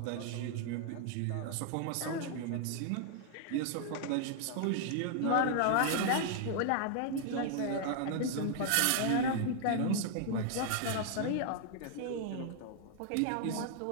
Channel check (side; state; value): both; different; correlation 0.00